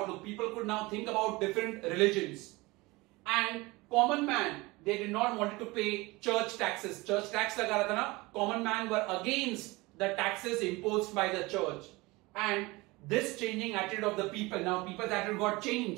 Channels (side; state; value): left; quieter; 22.7 dB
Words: People could now think about different religions. And common man, they did not want to pay church taxes. Church tax laga raha tha na, common man were against the taxes imposed by the church. And this changing attitude of the people, now people's attitude got